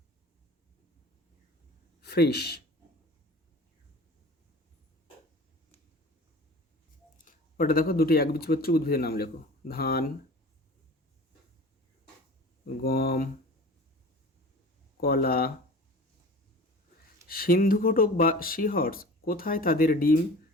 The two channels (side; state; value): both; normal; correlation 0.40